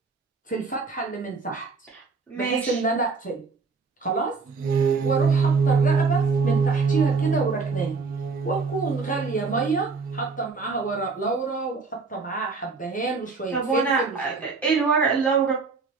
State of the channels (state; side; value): quieter; left; 4.6 dB